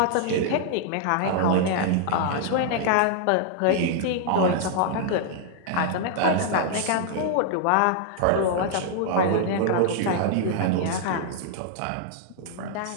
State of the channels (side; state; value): both; different; correlation 0.00